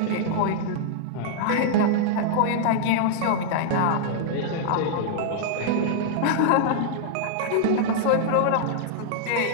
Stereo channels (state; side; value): different; both; correlation -0.01